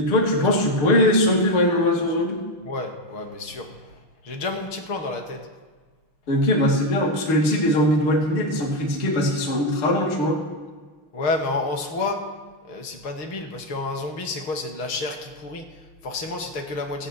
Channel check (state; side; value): late; right; 6.5 ms